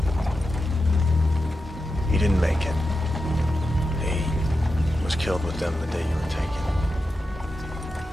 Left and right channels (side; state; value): both; normal; correlation 0.90